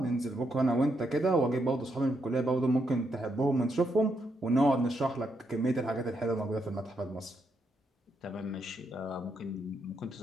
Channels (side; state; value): both; normal; correlation 0.79